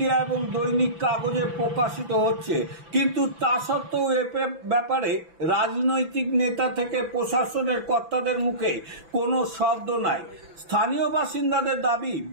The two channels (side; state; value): left; late; 6.0 ms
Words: এবং দৈনিক কাগজে প্রকাশিত হচ্ছে, কিন্তু তা সত্ত্বেও এ ব্যাপারে রাজনৈতিক নেতা থেকে প্রশাসনের কর্তাদের মুখে কোনো শব্দ নাই। স্থানীয় বাসিন্দাদের দাবি,